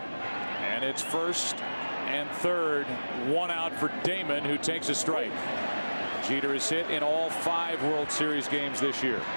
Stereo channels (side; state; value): both; inverted; correlation -1.00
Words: And it's first and third, 1 out for Damon, who takes a strike. Jeter is hit in all 5 World Series games this year.